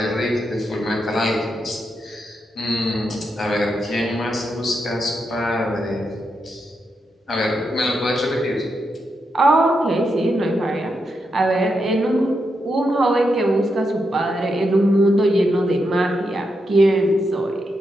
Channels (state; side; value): normal; both; correlation 0.84